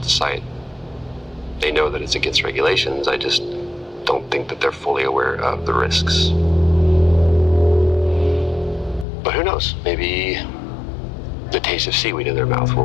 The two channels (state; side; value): drops out; right; at 9.1 s